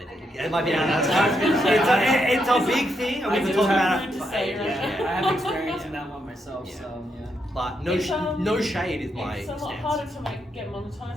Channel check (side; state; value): both; normal; correlation 0.80